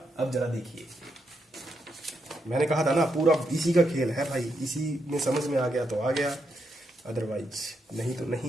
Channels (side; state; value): both; normal; correlation 0.81